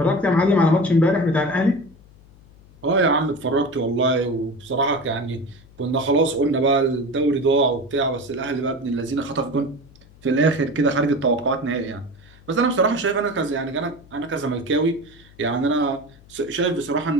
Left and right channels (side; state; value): left; noise; hum, 25 dB below the sound